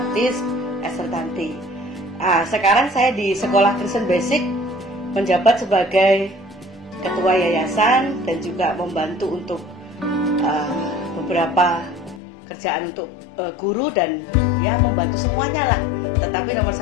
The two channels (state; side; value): drops out; right; at 12.2 s